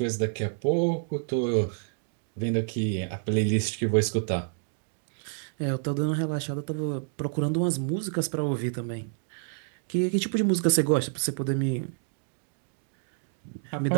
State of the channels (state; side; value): silent; left; digital silence